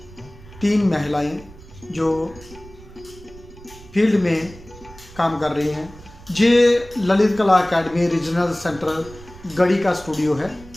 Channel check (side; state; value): right; noise; rumble, 20 dB below the sound